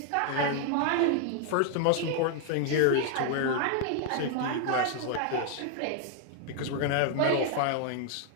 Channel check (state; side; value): different; both; correlation 0.00